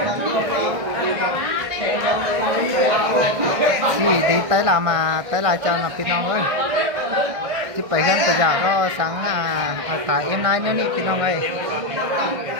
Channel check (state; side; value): late; left; 1.6 ms